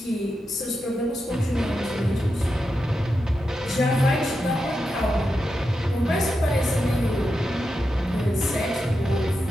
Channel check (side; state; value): both; normal; correlation 0.88